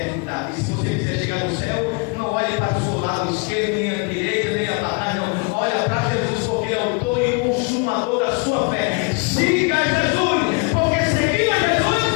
E se você quiser chegar no céu, não olhe para o seu lado esquerdo nem à direita.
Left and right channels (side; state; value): right; quieter; 31.8 dB